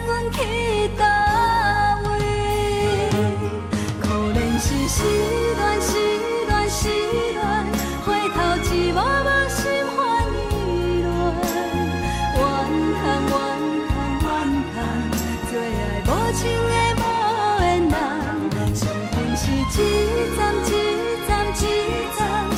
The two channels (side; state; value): both; identical; correlation 1.00